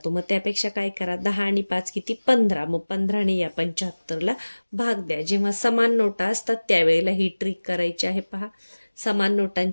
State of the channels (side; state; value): both; inverted; correlation -1.00